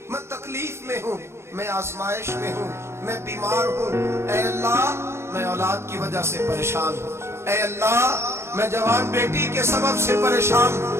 میں تکلیف میں ہوں، میں آزمائش میں ہوں، میں بیمار ہوں، اے اللہ میں اولاد کی وجہ سے پریشان ہوں، اے اللہ میں جوان بیٹی کے سبب سے پریشان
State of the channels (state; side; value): late; left; 0.13 ms